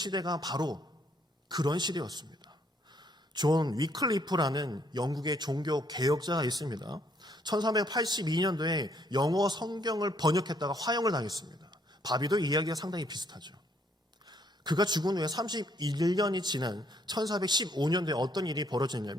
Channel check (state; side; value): normal; both; correlation 0.68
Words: 바로 그런 시대였습니다. 존 위클리프라는 영국의 종교 개혁자가 있습니다. 1382년도에 영어 성경을 번역했다가 화형을 당했습니다. 바비도 이야기가 상당히 비슷하죠. 그가 죽은 후에 31년이 지난 1415년도에 어떤 일이